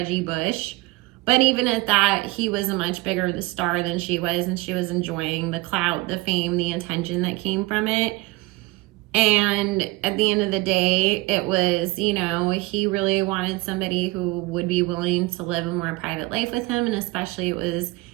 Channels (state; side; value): quieter; left; 21.7 dB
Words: Bush. But even at that, he was a much bigger star than she was, and she was enjoying the clout, the fame, the attention that came from it. And at the end of the day, it was, he really wanted somebody who would be willing to live a more private life with him. And especially it was